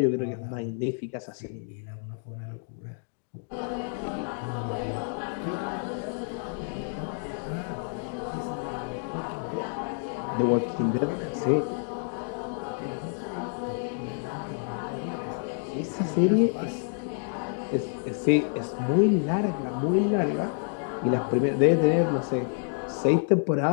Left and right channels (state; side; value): silent; right; 59 dB below the other